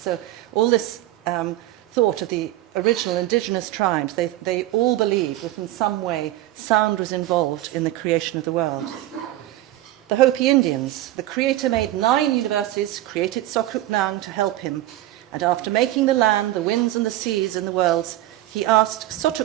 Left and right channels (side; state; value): left; quieter; 15.2 dB